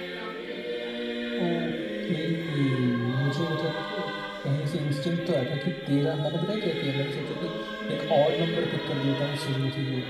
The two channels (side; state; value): both; identical; correlation 1.00